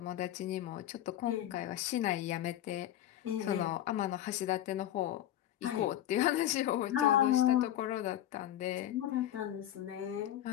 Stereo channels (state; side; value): quieter; right; 12.4 dB